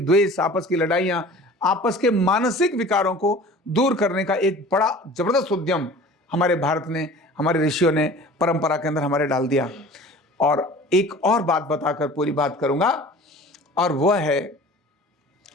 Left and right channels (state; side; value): normal; both; correlation 0.43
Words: आपस की लड़ाइयाँ, आपस के मानसिक विकारों को दूर करने का एक बड़ा जबरदस्त उद्यम हमारे भारत ने, हमारे ऋषियों ने परंपरा के अंदर हमारे डाल दिया। और एक और बात बताकर पूरी बात करूंगा, और वह है